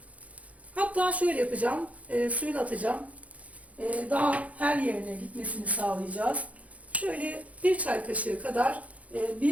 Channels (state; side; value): late; left; 0.068 ms